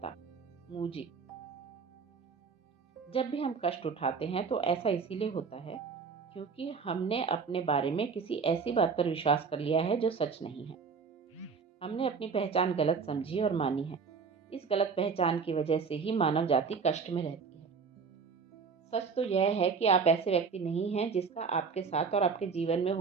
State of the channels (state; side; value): quieter; left; 5.4 dB